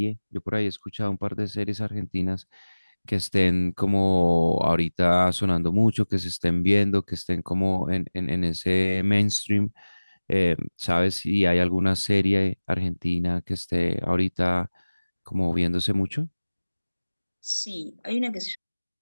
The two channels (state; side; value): inverted; both; correlation -1.00